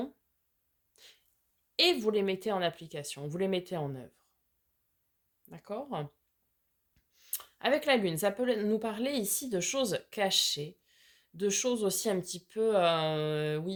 et vous les mettez en application, vous les mettez en œuvre. D'accord? Avec la lune, ça peut nous parler ici de choses cachées, de choses aussi un petit peu,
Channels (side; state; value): both; identical; correlation 1.00